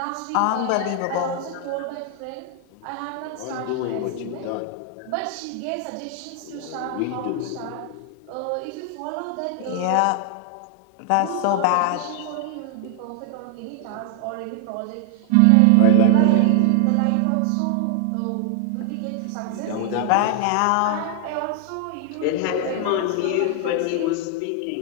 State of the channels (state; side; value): different; both; correlation 0.00